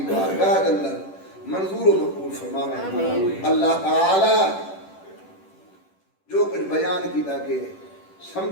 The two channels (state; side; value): late; right; 10 ms